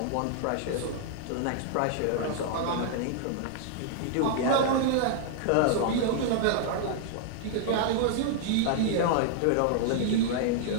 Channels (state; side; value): different; both; correlation -0.01